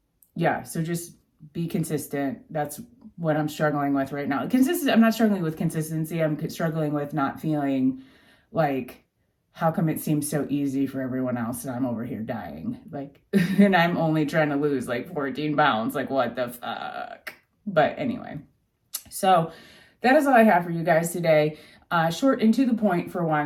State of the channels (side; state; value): both; identical; correlation 1.00